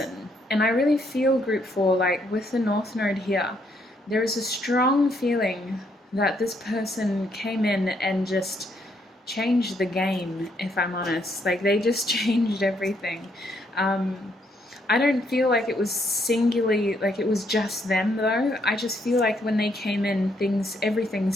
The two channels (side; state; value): both; normal; correlation 0.73